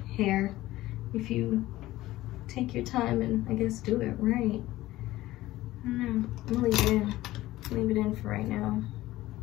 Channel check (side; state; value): right; quieter; 16.6 dB